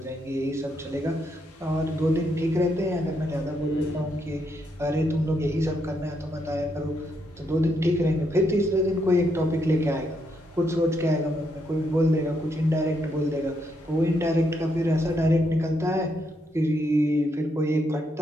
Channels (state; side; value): normal; both; correlation 0.78